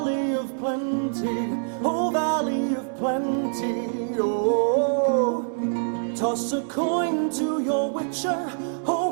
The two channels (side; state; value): left; silent; digital silence